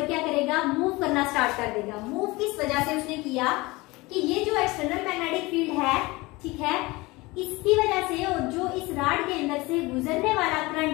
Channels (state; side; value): quieter; right; 22.4 dB